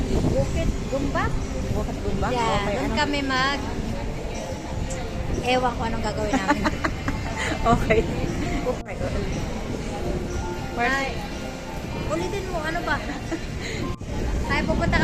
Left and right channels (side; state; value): both; identical; correlation 1.00